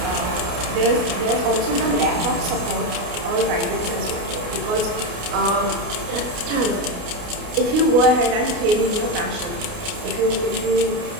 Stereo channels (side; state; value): left; late; 29 ms